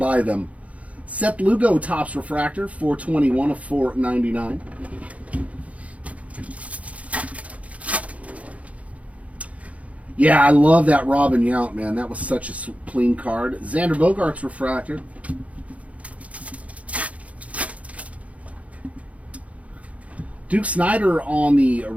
them. Seth Lugo tops refractor, 421 of 499. Yeah, I love that Robin Yount, man. That was such a clean card. Xander Bogaerts refractor. Duke Snyder on the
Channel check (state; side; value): late; left; 0.066 ms